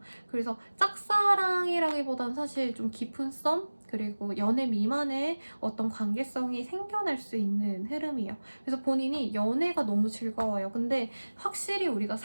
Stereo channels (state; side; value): inverted; both; correlation -1.00